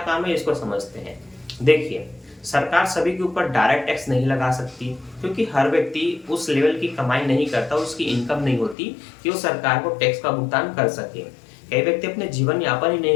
काम है, इसको समझते हैं। देखिए, सरकार सभी के ऊपर डायरेक्ट टैक्स नहीं लगा सकती, क्योंकि हर व्यक्ति उस लेवल की कमाई नहीं करता, उसकी इनकम नहीं होती कि वो सरकार को टैक्स का भुगतान कर सके। कई व्यक्ति अपने जीवन यापन ही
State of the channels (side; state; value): right; drops out; at 8.8 s